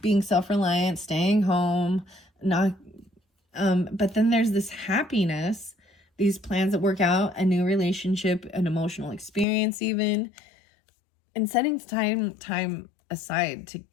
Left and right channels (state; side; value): drops out; right; at 9.5 s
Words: being self-reliant, staying home, not. But then there's this happiness, these plans that work out, a new relationship, an emotional experience, even, and setting time aside